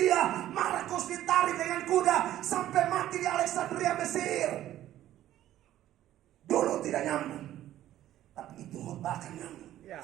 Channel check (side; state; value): left; quieter; 13.1 dB